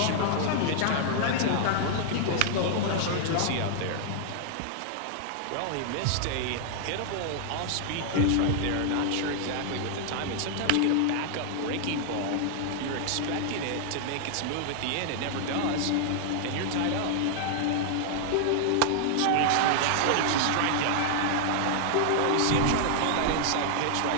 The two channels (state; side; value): different; both; correlation -0.01